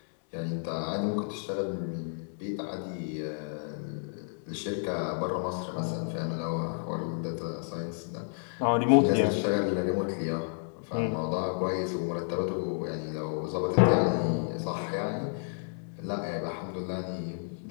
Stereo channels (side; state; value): right; silent; digital silence